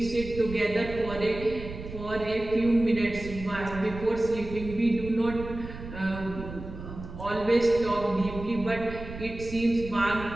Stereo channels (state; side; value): noise; right; rumble, 11 dB below the sound